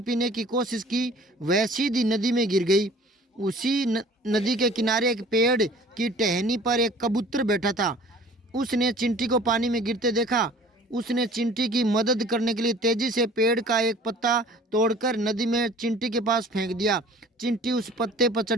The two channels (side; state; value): both; normal; correlation 0.48